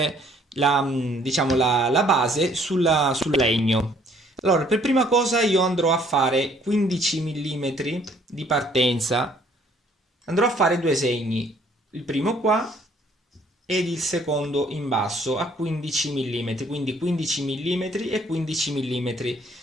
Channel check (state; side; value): normal; both; correlation 0.61